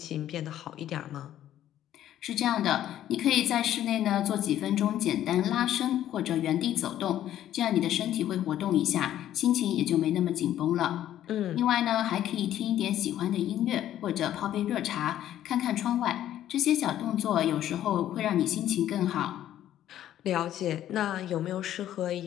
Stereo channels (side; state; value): right; quieter; 12.0 dB